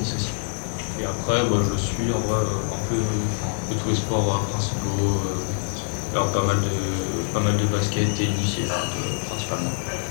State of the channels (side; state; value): right; silent; 62 dB below the other